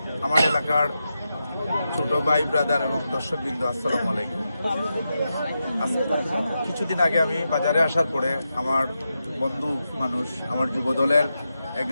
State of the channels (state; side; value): inverted; both; correlation -0.88